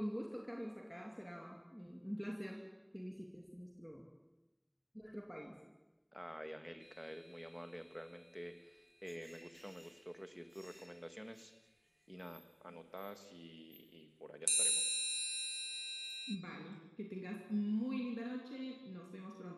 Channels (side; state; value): both; identical; correlation 1.00